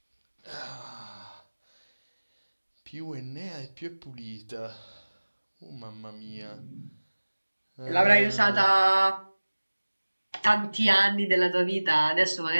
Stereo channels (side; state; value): both; inverted; correlation -1.00